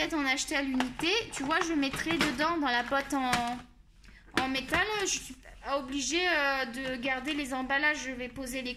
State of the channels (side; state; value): both; identical; correlation 1.00